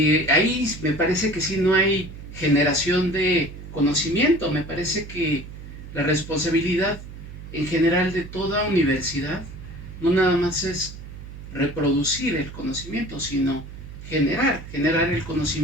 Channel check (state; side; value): noise; right; hum, 13 dB below the sound